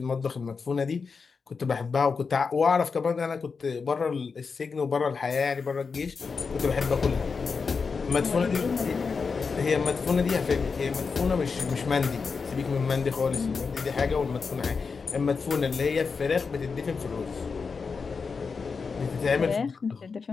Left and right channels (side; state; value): right; quieter; 5.1 dB